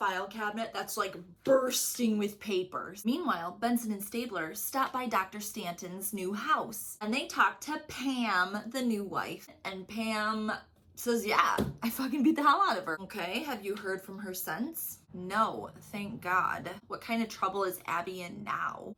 cabinet that's like bursting with papers. Meanwhile, Benson and Stabler stop by Dr. Stanton's new house, and they talk to Pam, the new wife, and Pam says, yeah, I fucking beat the hell out of her. Okay, have you heard from her since? No, thank God. What kind of trouble is Abby in now?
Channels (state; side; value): identical; both; correlation 1.00